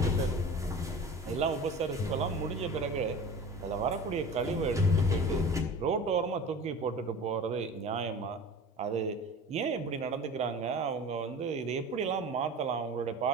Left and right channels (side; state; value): both; normal; correlation 0.37